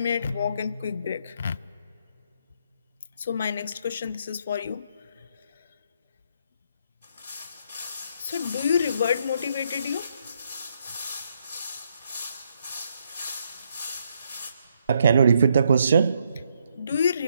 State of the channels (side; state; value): both; inverted; correlation -0.75